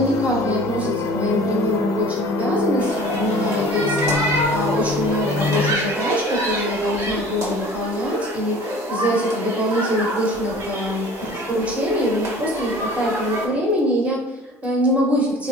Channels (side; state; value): both; normal; correlation 0.45